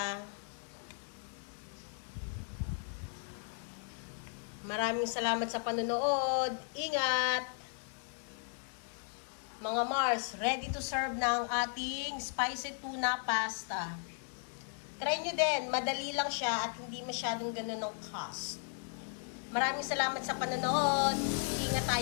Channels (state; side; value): silent; right; 54 dB below the other